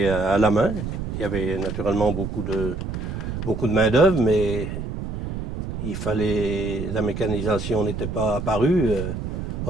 à la main. Il y avait naturellement beaucoup de main-d'œuvre, mais la mécanisation n'était pas apparue,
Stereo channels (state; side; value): noise; right; rumble, 5 dB below the sound